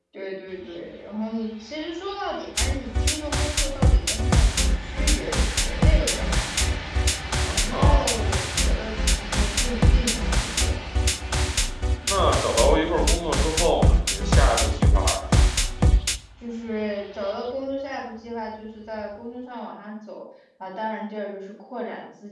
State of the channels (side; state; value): both; identical; correlation 1.00